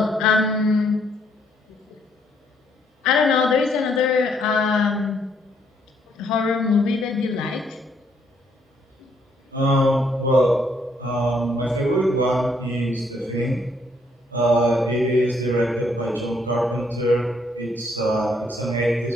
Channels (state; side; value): normal; both; correlation 0.70